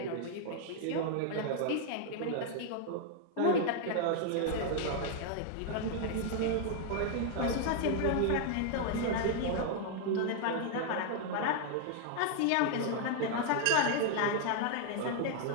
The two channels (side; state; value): both; different; correlation -0.01